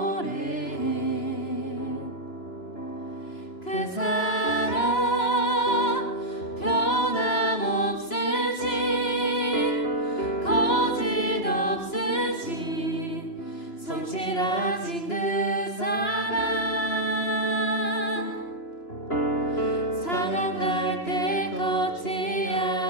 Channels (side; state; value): right; late; 2.9 ms